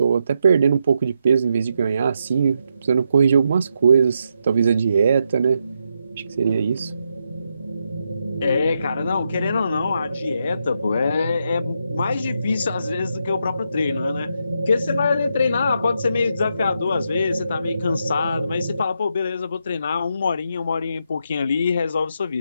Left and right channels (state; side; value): inverted; both; correlation -0.82